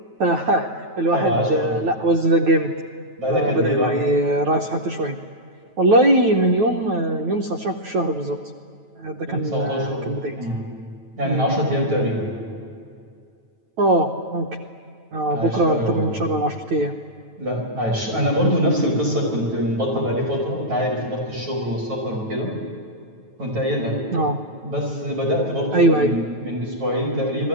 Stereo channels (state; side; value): late; left; 9.2 ms